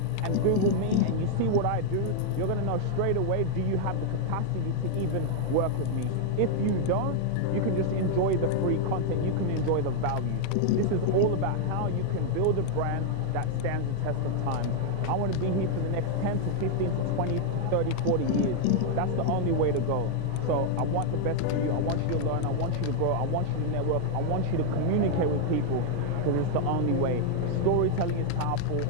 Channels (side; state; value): both; different; correlation 0.00